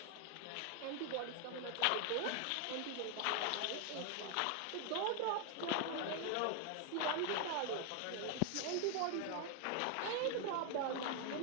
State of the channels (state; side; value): different; both; correlation 0.01